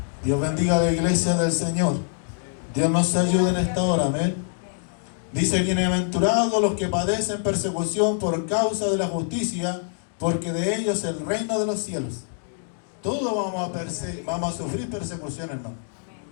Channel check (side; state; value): right; silent; 62 dB below the other